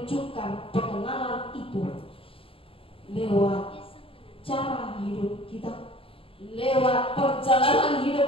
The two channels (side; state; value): right; late; 0.27 ms